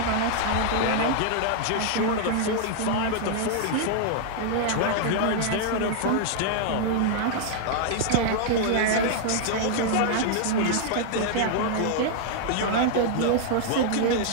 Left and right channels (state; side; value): different; both; correlation -0.01